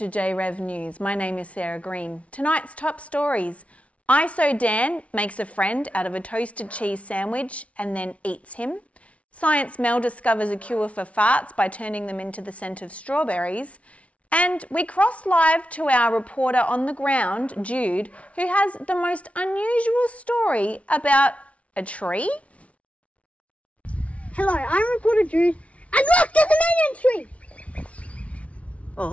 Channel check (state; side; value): late; right; 0.064 ms